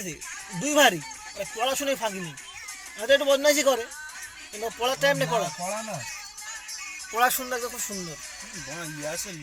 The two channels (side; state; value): both; identical; correlation 1.00